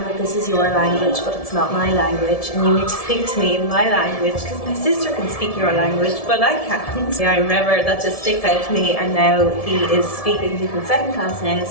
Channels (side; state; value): right; late; 1.7 ms